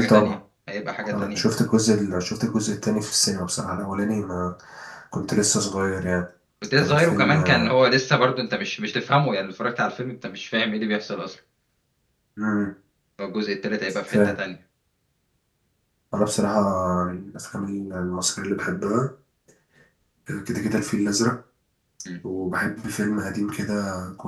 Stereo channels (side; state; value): both; identical; correlation 1.00